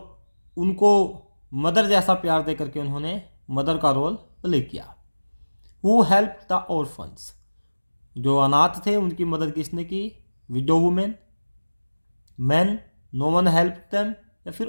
उनको मदर जैसा प्यार दे करके उन्होंने मदर का रोल प्ले किया। हु हेल्प द ऑर्फन्स, जो अनाथ थे उनकी मदद किसने की, widow women, man, no one help them, या फिर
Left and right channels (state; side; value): inverted; both; correlation -1.00